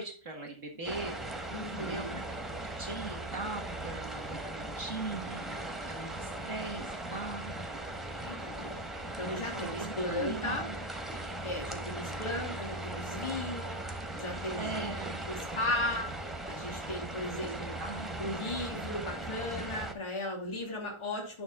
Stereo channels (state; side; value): late; right; 1.4 ms